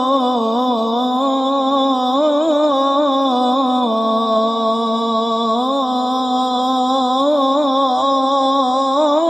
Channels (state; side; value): normal; both; correlation 0.96